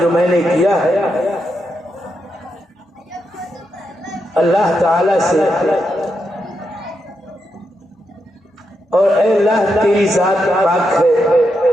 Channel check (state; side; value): normal; both; correlation 0.84